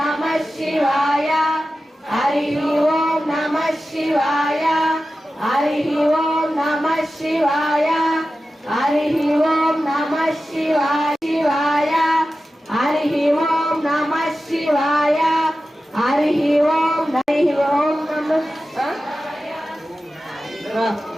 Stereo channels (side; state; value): both; normal; correlation 0.94